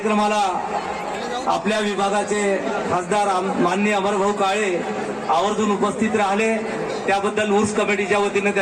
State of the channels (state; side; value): identical; both; correlation 1.00